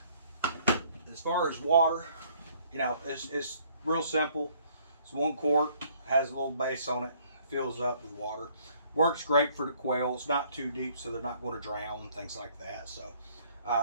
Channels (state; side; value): inverted; both; correlation -0.62